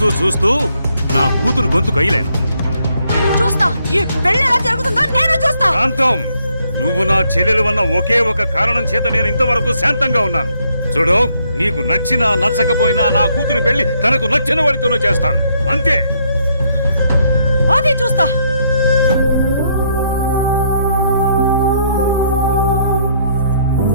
చూస్తూ నా కూతురు గొంతు కయ్యలేను. చూస్తా, ఈ పెళ్లి ఎలా జరుగుతుందో నేను చూస్తా. శాంతం, నువ్వు నా చెల్లెలు వన్న ఒకే ఒక కారణం చేత నేను ఇంతవరకు శాంతంగా ఉన్నాను. చూడు, నీకు నచ్చినా నచ్చకపోయినా నా కూతురు పెళ్లి తనకు నచ్చిన వాడితోనూ చేస్తాను, అంతే. అది చూస్తా.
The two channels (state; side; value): inverted; both; correlation -0.71